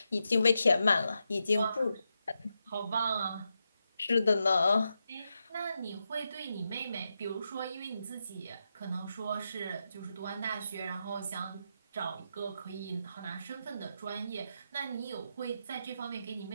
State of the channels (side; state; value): both; inverted; correlation -0.86